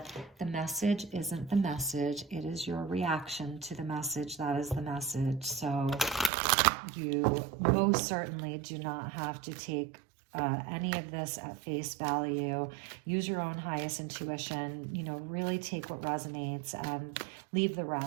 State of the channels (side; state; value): left; drops out; at 6.3 s